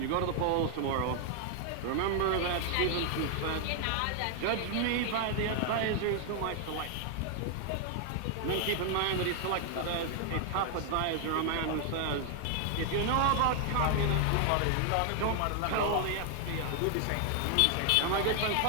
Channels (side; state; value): both; different; correlation 0.00